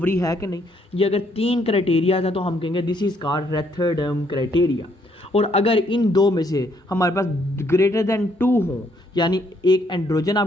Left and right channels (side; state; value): both; normal; correlation 0.70